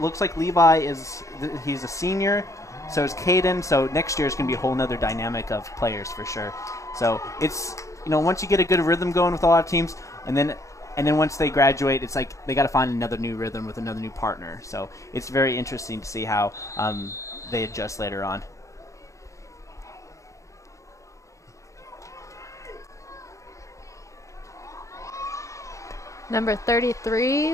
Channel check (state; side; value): late; right; 0.15 ms